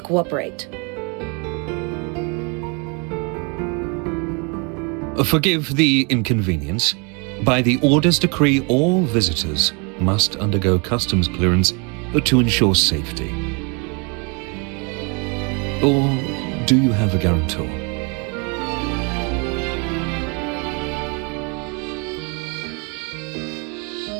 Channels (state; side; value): quieter; left; 33.1 dB